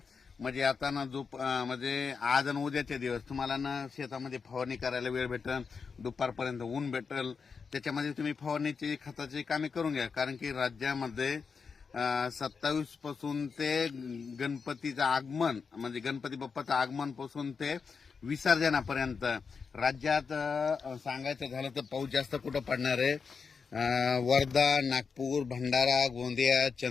म्हणजे आता ना म्हणजे आज आणि उद्याचे दिवस तुम्हाला ना शेतामध्ये फवारणी करायला वेळ भेटेल, दुपारपर्यंत ऊन भेटेल, त्याच्यामध्ये तुम्ही फवारणीची खताची कामे करून घ्या. कारण की राज्यामध्ये 27 पासून ते गणपतीचं आगमन म्हणजे गणपती बाप्पाचं आगमन पासून ते विसर्जनापर्यंत राज्यात सांगायचं झालं तर पाऊस जास्त कुठं पडणार आहे. वर्धा, नागपूर, भंडारा, गोंदिया,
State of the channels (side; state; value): right; quieter; 5.5 dB